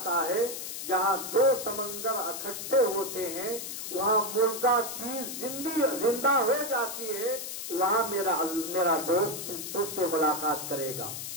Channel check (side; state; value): left; noise; hiss, 7 dB below the sound